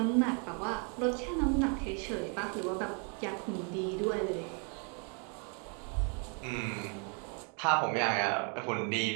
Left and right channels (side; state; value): left; quieter; 38.1 dB